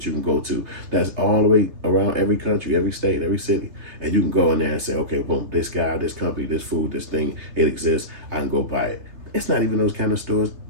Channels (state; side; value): late; left; 3.3 ms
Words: you can go to? That's all the way around every country, every state, every city. And you can go in there and say, okay, boom, this guy, this company, this food, this thing, it exists. I can go buy it. It's not even those kind of stores,